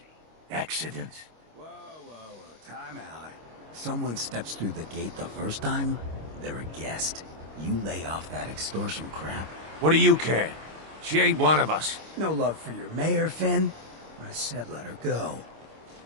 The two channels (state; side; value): late; left; 25 ms